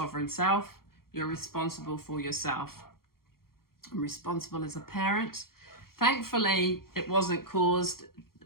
self. You're responsible for yourself. I'm responsible as a parent. Thankfully, it wasn't caused,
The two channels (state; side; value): late; right; 0.93 ms